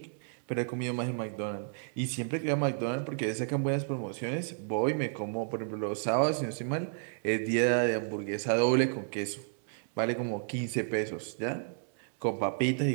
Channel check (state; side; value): silent; left; digital silence